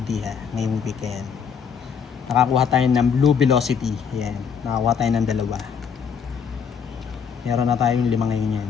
ngayong weekend. Nakakuha tayo ng Blue Velocity. Yan. Nakakuha tayo ng 2. Meron na tayong 5 ngayon yan.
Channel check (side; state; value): right; quieter; 6.8 dB